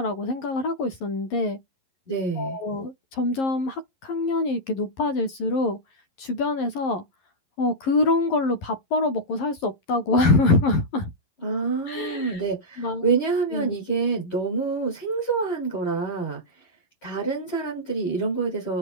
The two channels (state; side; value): late; right; 11 ms